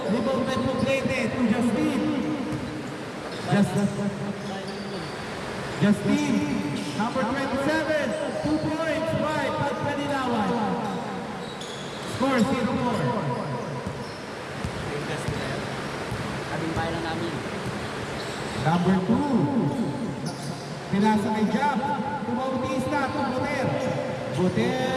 Rebound by Poblete to Justin. Justin, number 27, 2 points by Pagkalinawan. Score 0-4. Kaming bahay lang namin. Number 2, pinasa kay Jab. To Bautista, to Buter,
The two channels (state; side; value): identical; both; correlation 1.00